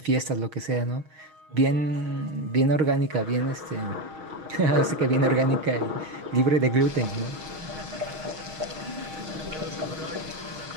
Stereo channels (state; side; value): late; left; 6.3 ms